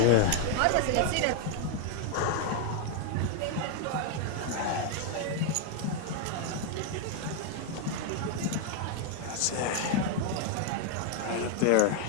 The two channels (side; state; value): both; different; correlation 0.00